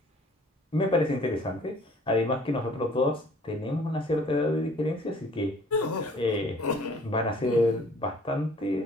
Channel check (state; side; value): normal; both; correlation 0.54